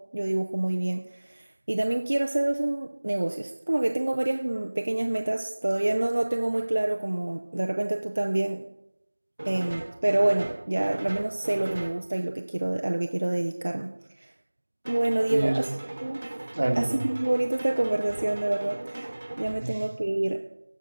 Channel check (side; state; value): both; inverted; correlation -1.00